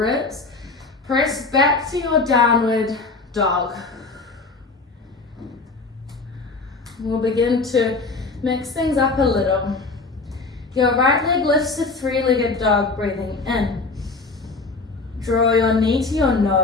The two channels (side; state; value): right; quieter; 3.8 dB